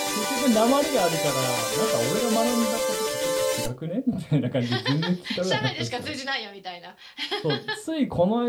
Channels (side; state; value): both; identical; correlation 1.00